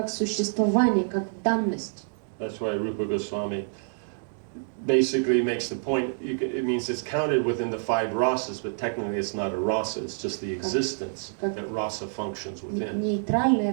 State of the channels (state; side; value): silent; left; digital silence